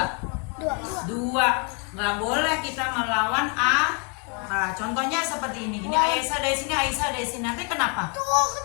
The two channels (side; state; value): right; quieter; 36.3 dB